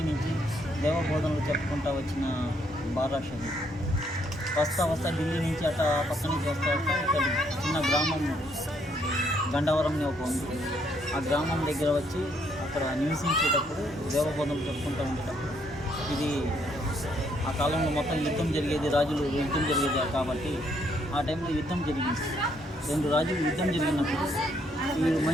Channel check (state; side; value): normal; both; correlation 0.71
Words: నుంచి దేవబోధనలు చెప్పుకుంటూ వచ్చిన బారా షహీద్ వస్తా ఢిల్లీ నుంచి అట్లా పక్క నుంచి వస్తా ఇక్కడ చిన్న గ్రామం గండవరం ఒక ఉంది. ఆ గ్రామం దగ్గర వచ్చి అక్కడ నివసించేటప్పుడు దేవబోధనలు చెప్పుకుంటూ ఉండేటప్పుడు ఇది ఆ కాలంలో మొత్తం యుద్ధం జరిగేది, రాజులు యుద్ధం జరిగేది కాబట్టి ఆ టైంలో యుద్ధం జరిగింది. 2 రాజులు యుద్ధం జరిగినప్పుడు ఈ